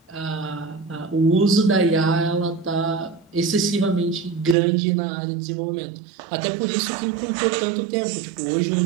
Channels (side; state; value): left; drops out; at 4.5 s